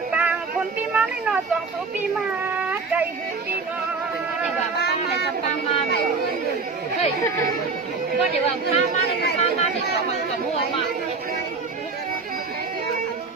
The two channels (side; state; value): left; quieter; 4.4 dB